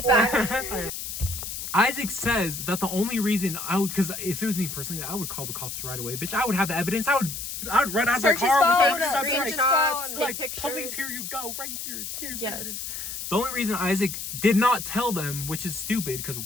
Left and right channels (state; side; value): noise; left; hiss, 6 dB below the sound